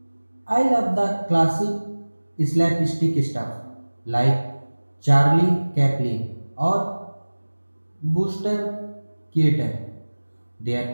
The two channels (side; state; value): both; inverted; correlation -1.00